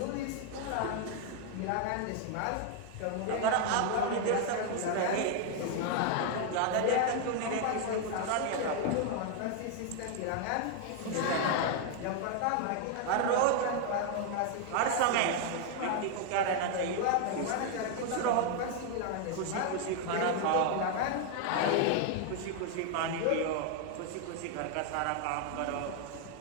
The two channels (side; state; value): both; different; correlation 0.00